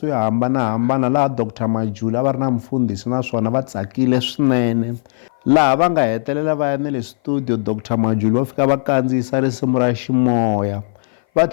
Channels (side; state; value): right; silent; 58 dB below the other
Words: yo hambanahambana laha Dr Majuli a va ri na mfundhisi naswona va tsakile swinene laha va nga hetelela va ya na le studio Dr Majuli va fika va kandziyisa risimu ra ximoya. Va